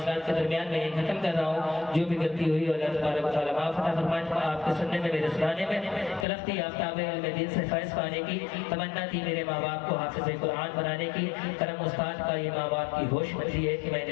کے درمیان میں ختم کر رہا ہوں. جو بھی غلطی ہوئی اللہ تبارک و تعالیٰ معاف عطا فرمائے. آپ کے سننے میں, میرے سنانے میں طرف تھی آفتاب علم دین سے فیض پانے کی, تمنا تھی میرے ماں باپ کو حافظ قرآن بنانے کی. کرم استاد کا یہ ماں باپ کی ہوش بچی ہے کہ میں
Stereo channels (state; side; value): drops out; right; at 6.2 s